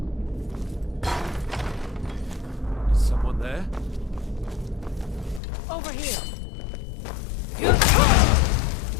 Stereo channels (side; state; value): right; drops out; at 5.4 s